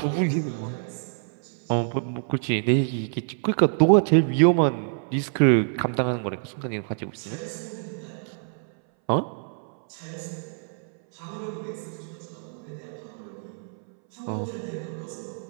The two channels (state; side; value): silent; left; 61 dB below the other